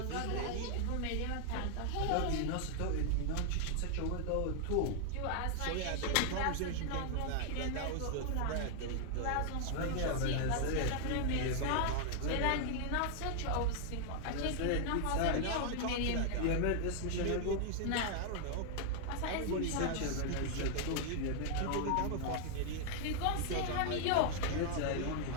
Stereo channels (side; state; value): both; different; correlation 0.00